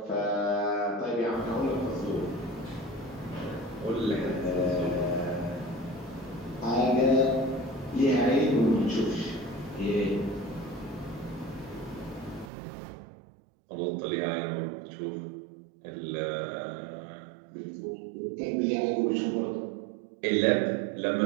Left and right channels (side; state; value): left; drops out; at 12.5 s